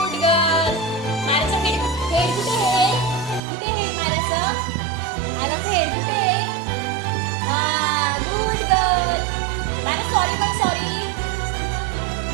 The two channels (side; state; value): left; drops out; at 3.4 s